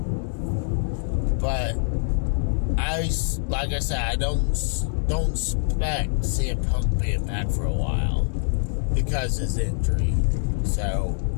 like I said, I don't expect CM Punk being back for a while because of his injury. So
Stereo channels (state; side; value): silent; right; digital silence